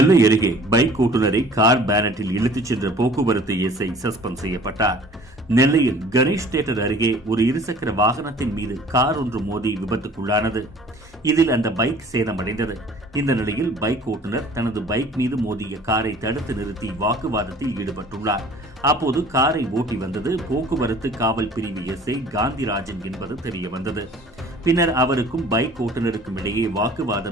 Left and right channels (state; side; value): normal; both; correlation 0.50